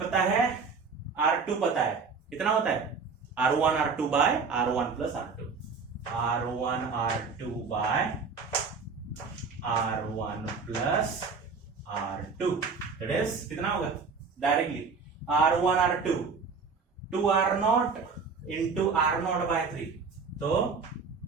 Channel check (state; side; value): quieter; left; 5.0 dB